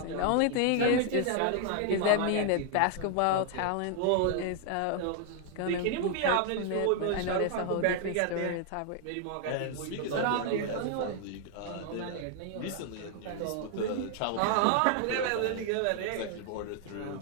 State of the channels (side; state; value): both; different; correlation 0.00